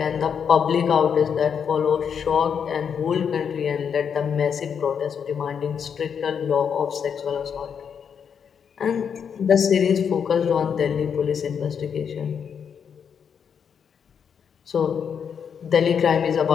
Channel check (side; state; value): right; quieter; 7.3 dB